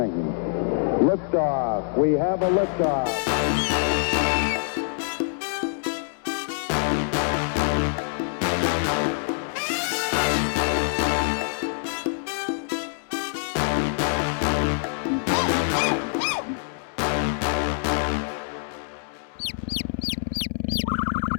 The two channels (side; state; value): right; silent; 62 dB below the other